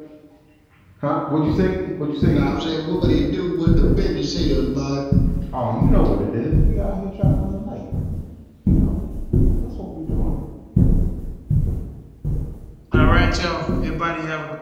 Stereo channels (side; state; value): both; identical; correlation 1.00